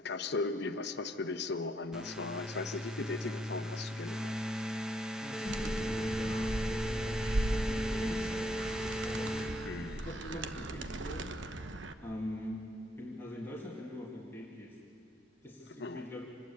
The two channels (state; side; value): normal; both; correlation 0.71